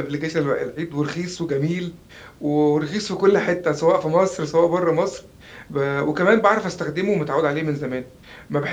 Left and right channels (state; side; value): identical; both; correlation 1.00